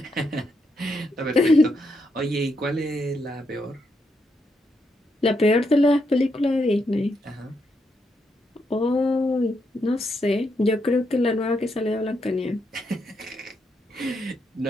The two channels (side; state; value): both; normal; correlation 0.80